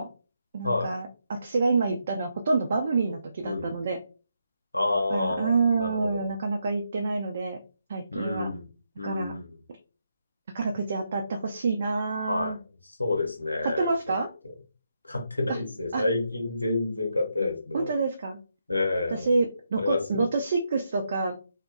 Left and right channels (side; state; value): both; inverted; correlation -0.81